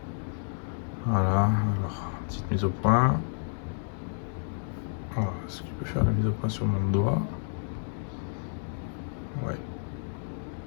Voilà, alors, petite mise au point. Voilà, est-ce qu'il peut faire la mise au point sur mon doigt? Ouais.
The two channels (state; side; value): silent; right; digital silence